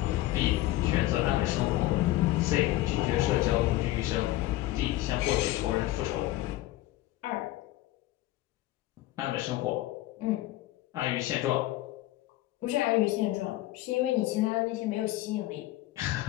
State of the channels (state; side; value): quieter; right; 16.3 dB